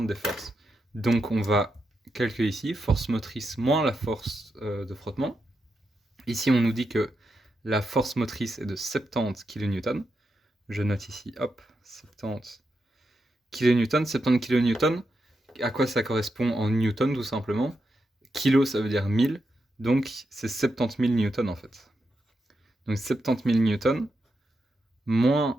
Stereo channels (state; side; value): normal; both; correlation 0.85